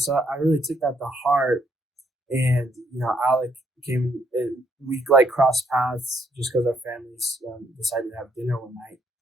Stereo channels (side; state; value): both; normal; correlation 0.72